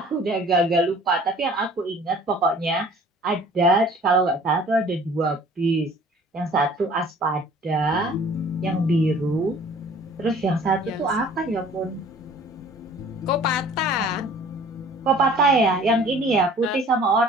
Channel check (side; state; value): both; normal; correlation 0.51